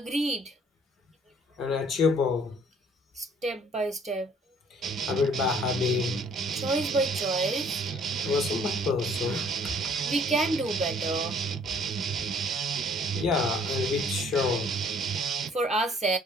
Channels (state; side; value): normal; both; correlation 0.60